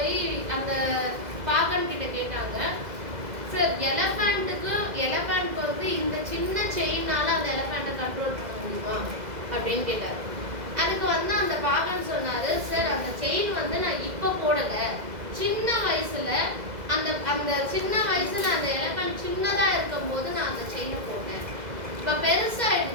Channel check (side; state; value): left; late; 2.0 ms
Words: அந்த பாகன் கிட்ட கேட்டாங்க, சார் எலஃபண்ட்க்கு வந்து இந்த சின்ன செயின்னால அந்த எலஃபண்ட்டை கண்ட்ரோல் பண்ண முடியுமா அப்படின்னு கேட்டார். அதுக்கு வந்து அந்த பாகன் சொன்னாரு, சார் அந்த செயின் வந்து நான் இப்போ போடலை, சின்ன வயசுல அந்த சின்ன வயசுல அந்த எலஃபண்ட் சின்னதா இருக்கும் போது நான் அந்த செயினை போட்டேன். இப்ப